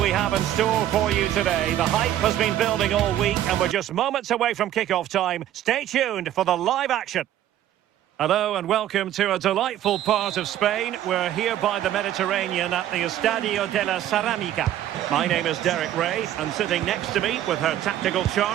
have in store for you today. The hype has been building all week and we're just moments away from kick-off time. Stay tuned for the live action. Hello and welcome to a delightful part of Spain. We're here by the Mediterranean at the Estadio de la Ceramica. My name is Derek Ray and sitting next to me with her tactical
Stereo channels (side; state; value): left; quieter; 12.2 dB